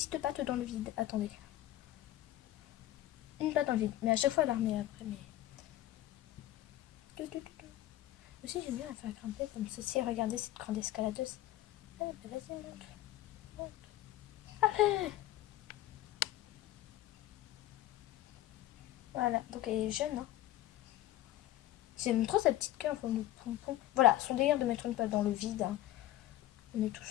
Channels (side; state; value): right; quieter; 14.5 dB